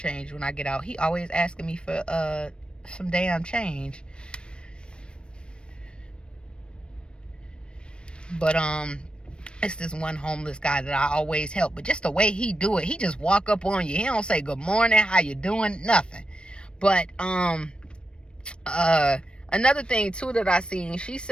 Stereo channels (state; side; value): late; right; 0.055 ms